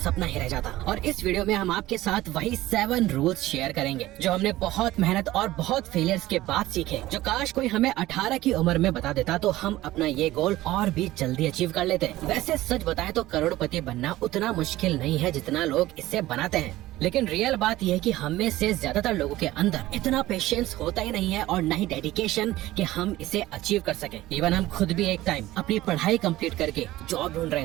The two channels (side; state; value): left; quieter; 16.5 dB